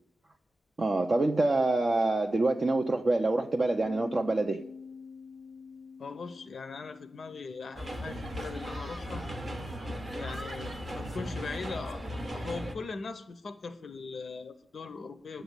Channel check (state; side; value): normal; both; correlation 0.93